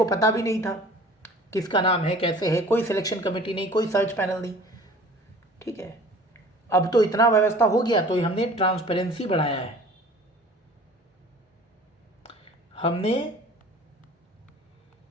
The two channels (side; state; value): both; normal; correlation 0.47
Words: पता भी नहीं था किसका नाम है, कैसे है, कोई सिलेक्शन कमेटी नहीं, कोई सर्च पैनल नहीं, ठीक है। अब तो इतना व्यवस्था हो गया तो हमने ट्रांसपेरेंसी बढ़ाया है, हमने